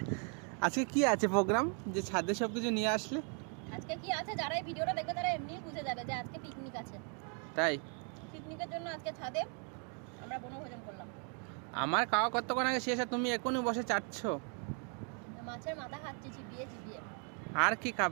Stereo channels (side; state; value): left; quieter; 39.9 dB